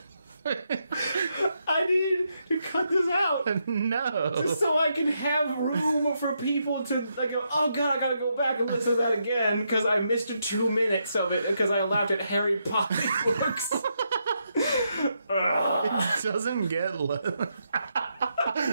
I need to cut this out. No. Just so I can have room for people to like go, oh god, I gotta go back and listen to that again because I missed 2 minutes of it because I laughed at Harry Potter books. It doesn't get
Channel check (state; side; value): inverted; both; correlation -0.81